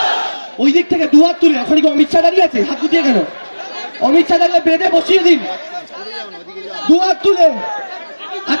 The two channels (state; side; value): inverted; both; correlation -1.00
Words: ওই দিক থেকে দুহাত তুলে, ওখানে কি অমিত শাহ দাঁড়িয়ে আছে? হাত গুটিয়ে কেন? অমিত শাহ দাঁড়িয়ে বেঁধে বসিয়ে দিন, দুহাত তুলে।